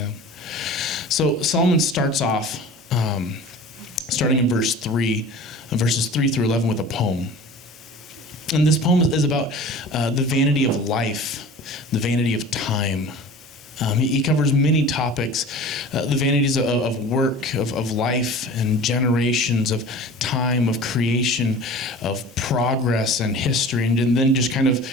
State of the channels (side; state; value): both; normal; correlation 0.40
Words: So Solomon starts off, starting in verses 3 through 11 with a poem. And this poem is about the vanity of life, the vanity of time. He covers many topics, the vanities of work, of life and generations, of time, of creation, of progress and history, and then just kind of